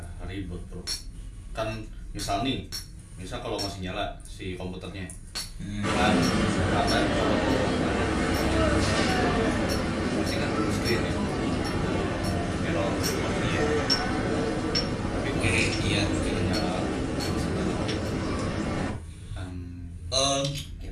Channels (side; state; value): both; identical; correlation 1.00